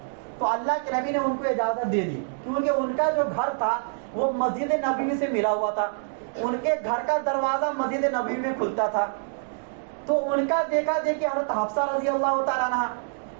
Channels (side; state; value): left; silent; digital silence